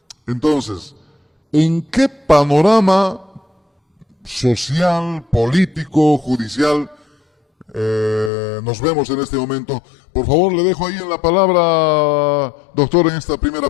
Entonces, ¿en qué panorama social, político, judicial nos vemos en este momento? Por favor, le dejo ahí en la palabra, doctor, en esta primera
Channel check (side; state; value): right; drops out; at 8.3 s